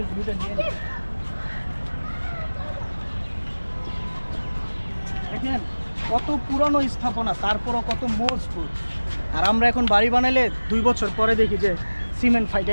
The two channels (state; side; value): inverted; both; correlation -1.00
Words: ভিউটা নিয়ে নিই। দেখেন কত পুরানো স্থাপনা, তারপরও কত মজবুত। আর আমরা এখন বাড়ি বানাইলে 2 বছর পরে দেখি যে সিমেন্ট